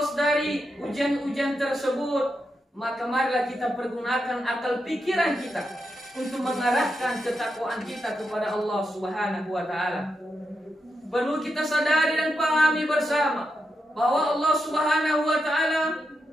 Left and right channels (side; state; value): both; normal; correlation 0.85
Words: dari ujian-ujian tersebut, maka marilah kita pergunakan akal pikiran kita untuk mengarahkan ketakwaan kita kepada Allah Subhanahu wa taala. Perlu kita sadari dan pahami bersama bahwa Allah Subhanahu wa taala